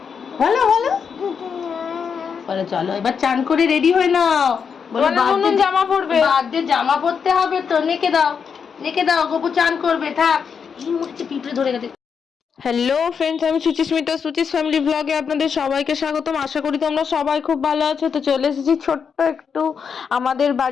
বলো বলো বলো। চলো এবার চান করে রেডি হয়ে নাও। বলো জামা পরবে, বার্থডে জামা পরতে হবে তো। নেকে দাও, নেকে দাও, গপু চান করবে। থাক, এই মুখে পিঁপড়ে ধরে গেছে। হ্যালো ফ্রেন্ডস, আমি সুচিস্মিতা, সুচিস ফ্যামিলি ব্লগে আপনাদের সবাইকে স্বাগতম। আশা করি তোমরা সবাই খুব ভালো আছো। তো চলে এসেছি ছোট্ট একটু আমাদের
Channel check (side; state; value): right; quieter; 6.5 dB